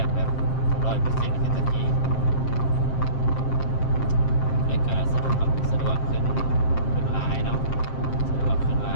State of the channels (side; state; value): right; late; 7.6 ms